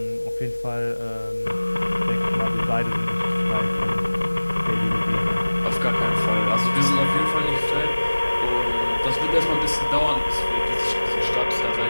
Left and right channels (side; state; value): both; inverted; correlation -1.00